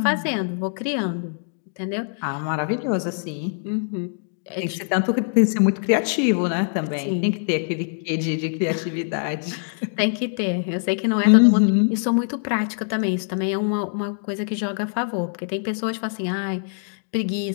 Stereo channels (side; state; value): right; silent; digital silence